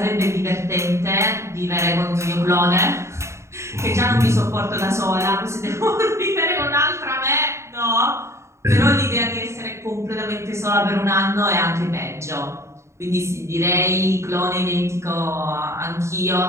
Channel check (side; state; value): left; late; 0.14 ms